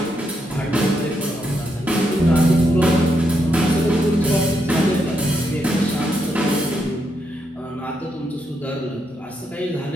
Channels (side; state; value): both; normal; correlation 0.80